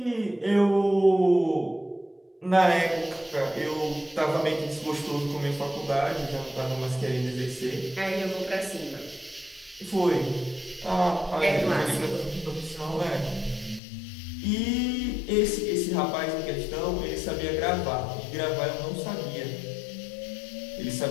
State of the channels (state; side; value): drops out; right; at 13.8 s